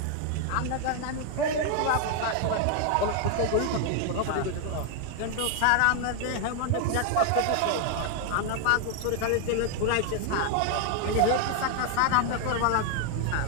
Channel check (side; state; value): both; different; correlation 0.00